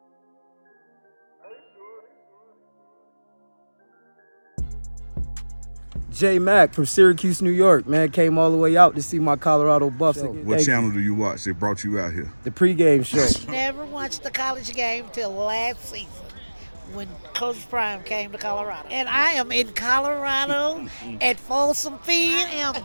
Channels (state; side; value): inverted; both; correlation -1.00